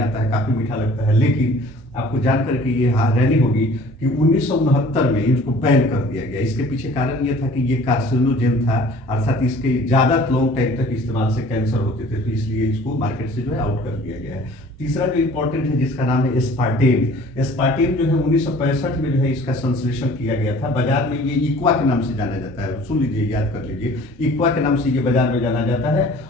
आता है, काफ़ी मीठा लगता है। लेकिन आपको जानकर के ये हैरानी होगी कि 1969 में इसको बैन कर दिया गया। इसके पीछे कारण ये था कि ये कार्सिनोजेन था, अर्थात इसके ज़्यादा लॉन्ग टाइम तक इस्तेमाल से कैंसर होते थे, तो इसलिए इसको मार्केट से जो है आउट कर दिया गया है। तीसरा जो इम्पोर्टेंट है जिसका नाम है एस्पार्टेम। एस्पार्टेम जो है 1965 में जो है इसका संश्लेषण किया गया था। बाजार में ये इक्वा के नाम से जाना जाता है, सुन लीजिए, याद कर लीजिए, इक्वा के नाम से ये बाजार में जाना जाता है,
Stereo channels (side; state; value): both; normal; correlation 0.50